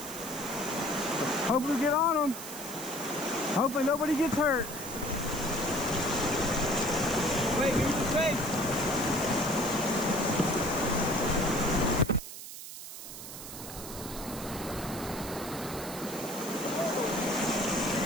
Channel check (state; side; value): noise; right; hiss, 11 dB below the sound